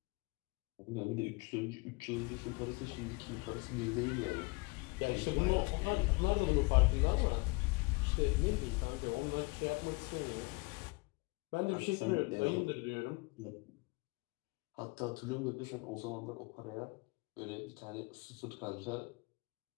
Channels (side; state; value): right; quieter; 27.0 dB